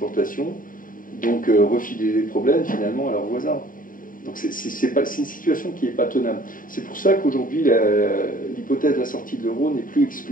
donc refilaient les problèmes finalement à leurs voisins. Donc c'est une situation qui n'est pas tenable. C'est pour ça qu'aujourd'hui l'hypothèse de la sortie de l'euro n'est plus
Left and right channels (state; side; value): late; right; 0.40 ms